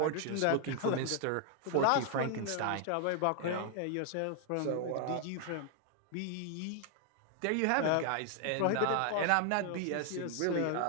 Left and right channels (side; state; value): both; different; correlation 0.00